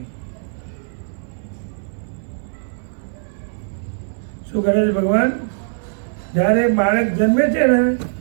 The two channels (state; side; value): silent; left; 65 dB below the other